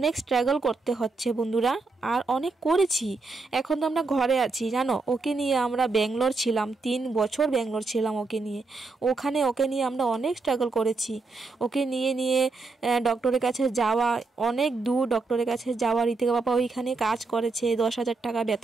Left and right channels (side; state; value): left; quieter; 3.9 dB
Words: স্ট্রাগল করতে হচ্ছে বন্ধুরা, আর অনেক করেছি। এখন তো আমরা ঘরে আছি জানো, ওকে নিয়ে আমরা ব্যাঙ্গালোর ছিলাম, 3 বছর ব্যাঙ্গালোর ছিলাম ওকে নিয়ে। ওকে নিয়ে আমরা অনেক স্ট্রাগল করেছি, ওকে নিয়ে ডক্টরের কাছে যাওয়া, অনেক দূর ডক্টরের কাছে যাওয়া। ঋতিকা বাবা ওইখানে কাজ করেছে 10,000 টাকা